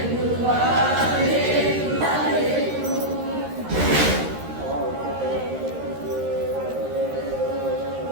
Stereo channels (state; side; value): late; left; 13 ms